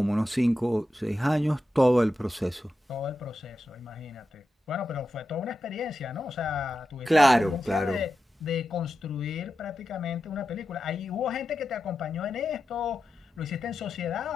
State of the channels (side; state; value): both; normal; correlation 0.90